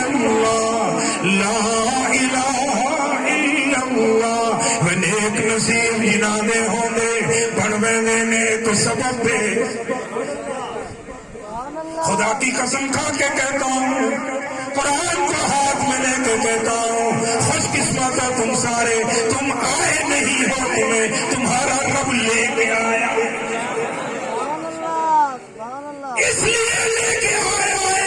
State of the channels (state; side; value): identical; both; correlation 1.00